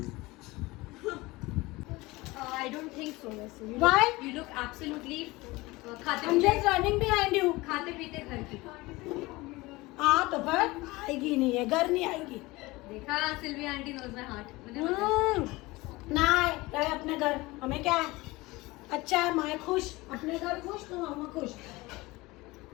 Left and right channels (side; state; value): right; quieter; 21.3 dB